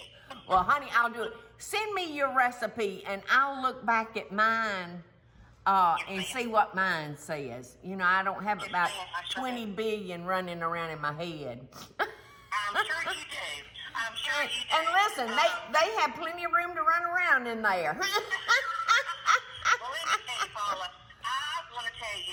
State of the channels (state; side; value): identical; both; correlation 1.00